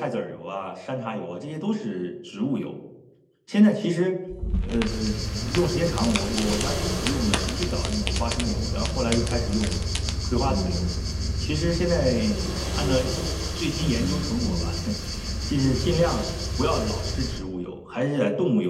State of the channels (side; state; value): both; identical; correlation 1.00